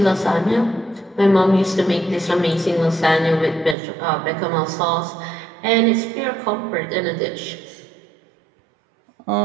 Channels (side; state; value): left; drops out; at 3.8 s